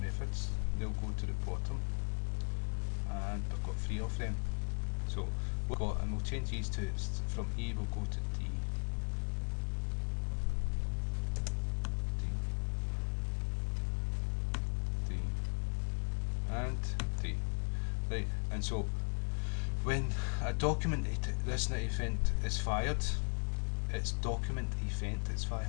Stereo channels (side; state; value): right; silent; digital silence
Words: they'll go to the bottom, and we've got 3 of them. So and we'll change these to, from E we'll go to D, and D. Right, and so when a document listener event is fired, it's document event is